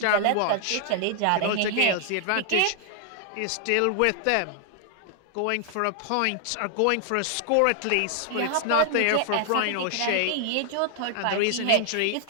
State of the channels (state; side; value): different; both; correlation 0.00